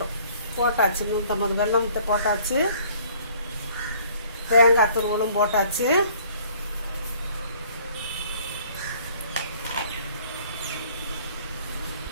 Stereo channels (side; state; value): both; inverted; correlation -0.57